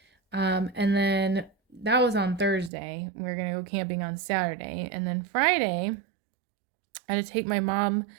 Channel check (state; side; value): drops out; left; at 2.7 s